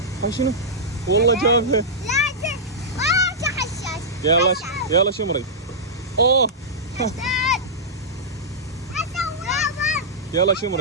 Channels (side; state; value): both; normal; correlation -0.12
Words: شنو؟ والله جابها. يلا يلا شمري. اوه. يلا